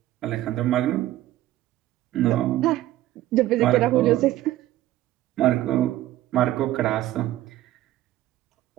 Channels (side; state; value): left; quieter; 14.8 dB